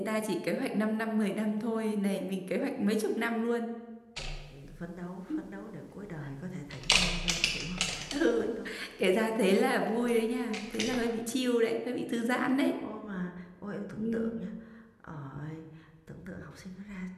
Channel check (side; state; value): both; identical; correlation 1.00